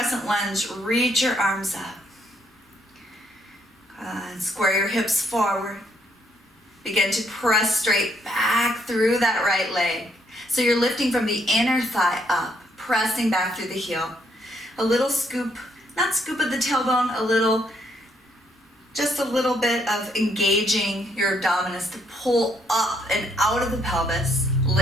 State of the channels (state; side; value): normal; both; correlation 0.71